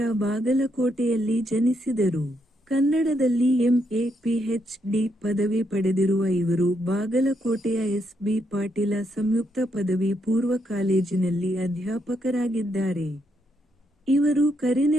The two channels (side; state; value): both; normal; correlation 0.78